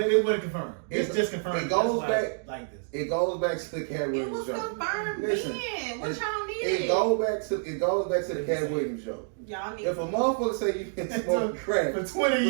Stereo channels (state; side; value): silent; left; digital silence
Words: it wasn't confirmed. It's just confirmed. It goes back like this. It goes back to the Cat Williams show. It was confirmed then. What y'all needed? It goes back to the Cat Williams show. Y'all need. If a motherfucker say you been smoking crack for 20